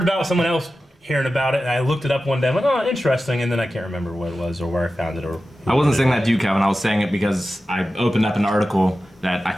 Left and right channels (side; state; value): both; normal; correlation 0.93